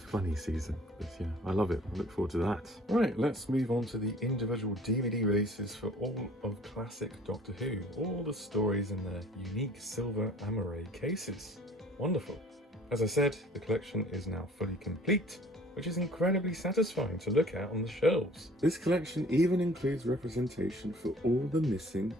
season, but yeah, I love it. I look forward to that. Right, let's move on to the individual DVD releases for all of classic Doctor Who. All the stories in their unique silver amaray cases. Wonderful. As I said, the collection is now fully complete. which is incredibly satisfying to look at on the shelves. This collection even includes representation for all the missing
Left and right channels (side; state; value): both; normal; correlation 0.52